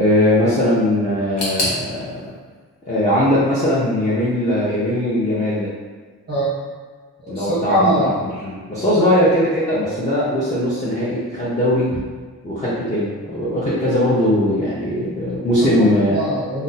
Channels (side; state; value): both; normal; correlation 0.31